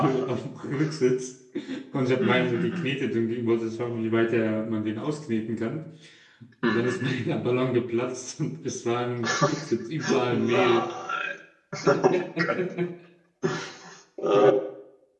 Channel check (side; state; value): both; identical; correlation 1.00